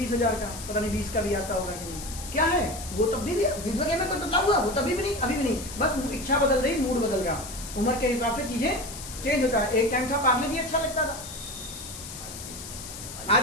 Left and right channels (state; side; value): noise; left; hiss, 11 dB below the sound